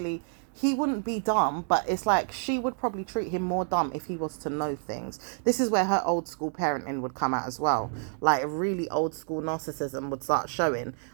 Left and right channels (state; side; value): silent; left; 59 dB below the other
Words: he wouldn't be dumb, but it's like she would probably treat him more dumb if he was to know things. This is where her old school parenting would come out as well. Like, really old school narcissism would start showing.